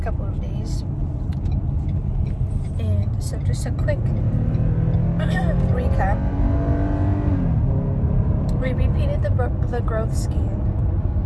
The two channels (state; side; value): identical; both; correlation 1.00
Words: couple of days. And so just a quick recap. We repeated the growth